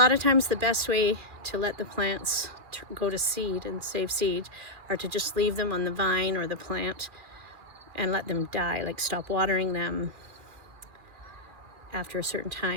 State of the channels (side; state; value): left; late; 2.4 ms